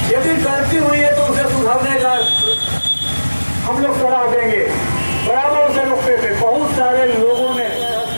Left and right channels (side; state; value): both; inverted; correlation -1.00